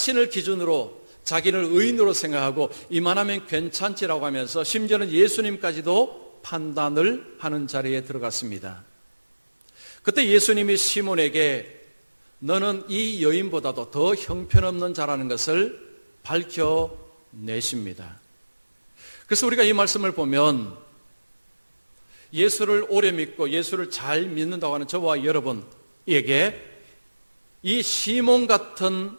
기준으로 자기를 의인으로 생각하고 이만하면 괜찮지라고 하면서 심지어는 예수님까지도 판단을 하는 자리에 들어갔습니다. 그때 예수님이 시몬에게 너는 이 여인보다도 더 형편없는 자라는 것을 밝혀내십니다. 그래서 우리가 이 말씀을 보면 예수를 오래 믿고 예수를 잘 믿는다고 하는 저와 여러분에게 이 시몬 같은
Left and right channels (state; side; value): inverted; both; correlation -1.00